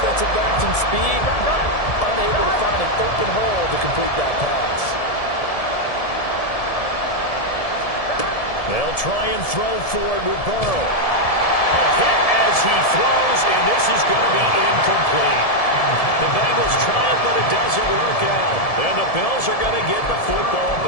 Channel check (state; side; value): late; right; 1.7 ms